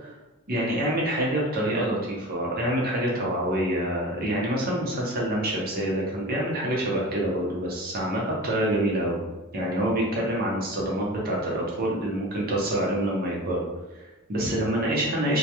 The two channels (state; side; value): normal; both; correlation 0.35